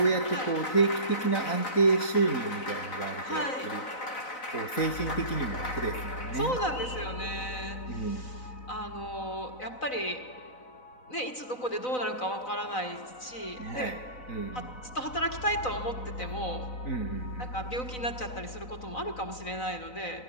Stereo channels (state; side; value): late; right; 4.0 ms